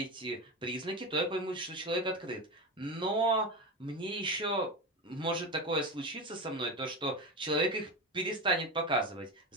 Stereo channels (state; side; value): normal; both; correlation 0.21